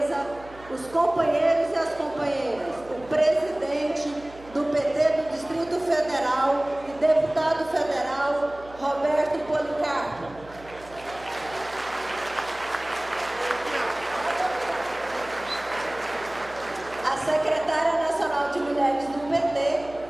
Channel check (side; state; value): right; noise; hum, 21 dB below the sound